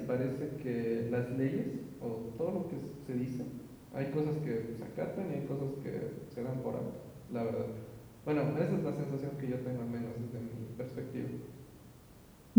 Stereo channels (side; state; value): both; identical; correlation 1.00